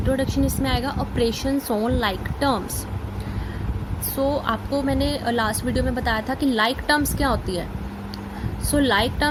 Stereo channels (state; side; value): identical; both; correlation 1.00